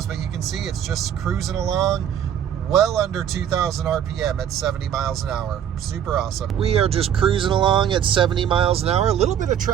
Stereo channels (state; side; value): quieter; left; 9.4 dB